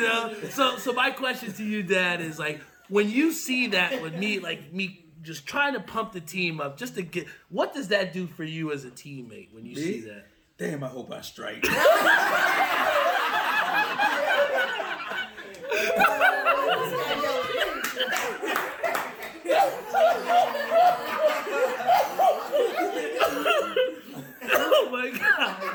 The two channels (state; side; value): identical; both; correlation 1.00